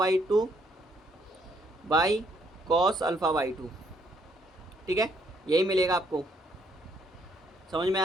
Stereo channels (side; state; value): both; normal; correlation 0.68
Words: two by cos alpha by to, ठीक है, यही मिलेगा आपको, समझ में